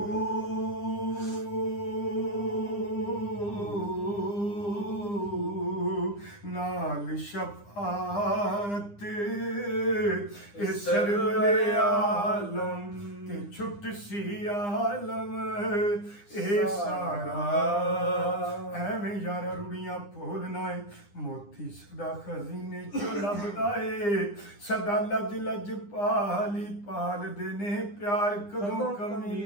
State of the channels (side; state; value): right; late; 9.9 ms